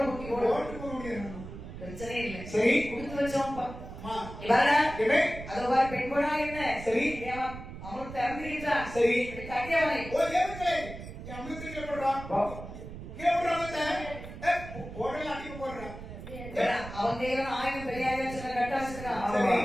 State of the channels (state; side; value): noise; right; rumble, 12 dB below the sound